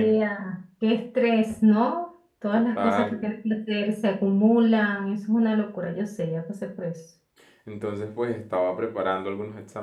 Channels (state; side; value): identical; both; correlation 1.00